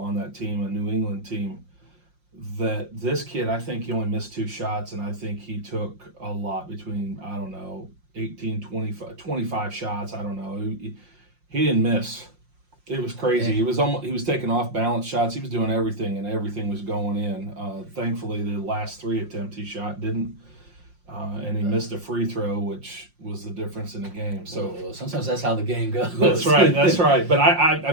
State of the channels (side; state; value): left; late; 5.6 ms